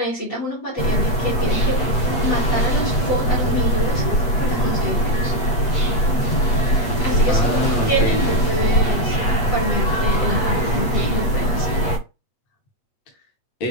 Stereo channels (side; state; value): right; late; 8.3 ms